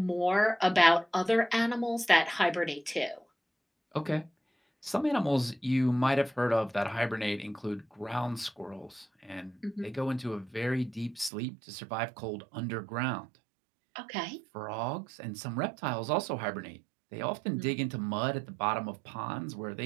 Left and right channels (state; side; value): drops out; left; at 11.3 s